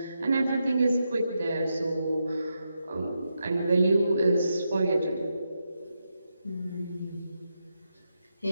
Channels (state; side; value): inverted; both; correlation -0.85